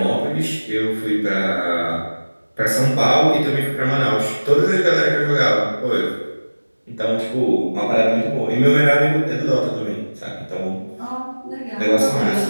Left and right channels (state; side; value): inverted; both; correlation -1.00